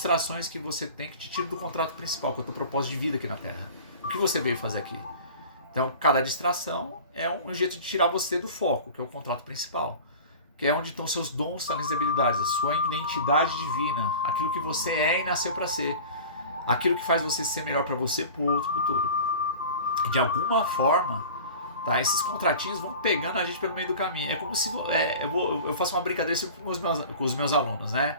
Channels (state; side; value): inverted; both; correlation -0.38